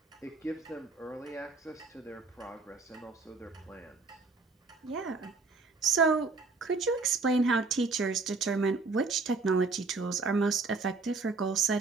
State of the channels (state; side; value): quieter; left; 4.0 dB